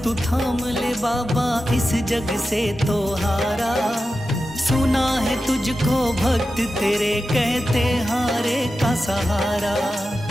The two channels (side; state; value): both; normal; correlation 0.92